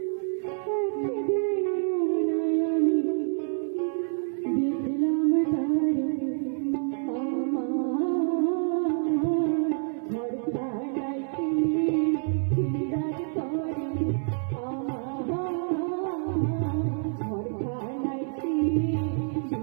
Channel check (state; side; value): silent; left; digital silence